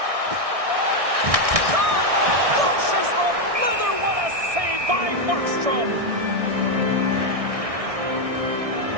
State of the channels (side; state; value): left; late; 1.6 ms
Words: Shot! Pushes the leather. What a save by Markstrom.